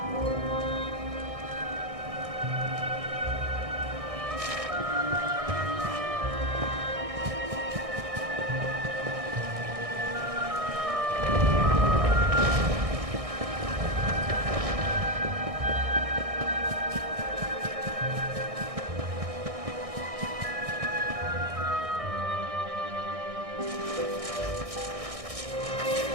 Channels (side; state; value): left; late; 1.6 ms